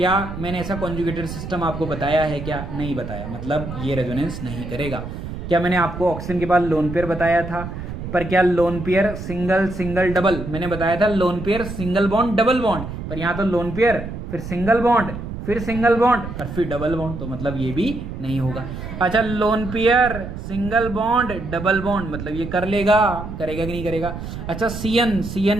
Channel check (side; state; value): right; noise; rumble, 8 dB below the sound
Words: मैंने ऐसा कॉन्जुगेटेड सिस्टम आपको बताया है? क्या नहीं बताया, मतलब ये रेजोनेंस नहीं करेगा। क्या मैंने आपको ऑक्सीजन के बाद लोन पेयर बताया था? पर क्या lone pair single single double, मैंने बताया था lone pair single bond double bond, पर यहाँ तो लोन पेयर फिर सिंगल बॉन्ड फिर सिंगल बॉन्ड और फिर डबल बॉन्ड, तो मतलब ये भी नहीं होगा। अच्छा, lone pair single bond double bond, मतलब ये कर लेगा, करेगा कि नहीं करेगा? अच्छा,